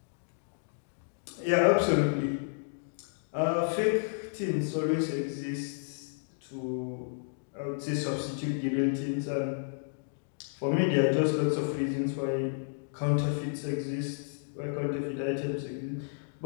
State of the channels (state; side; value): silent; right; digital silence